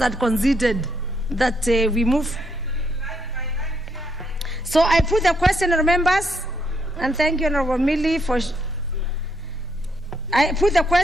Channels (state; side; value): normal; both; correlation 0.75